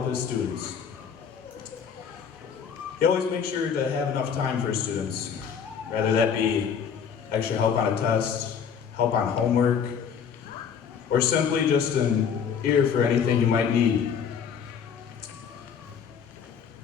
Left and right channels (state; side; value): quieter; right; 7.2 dB